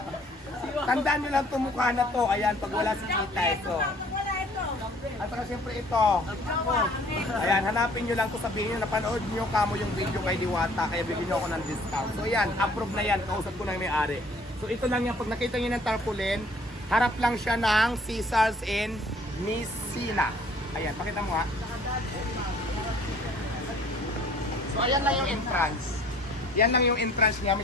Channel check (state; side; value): normal; both; correlation 0.55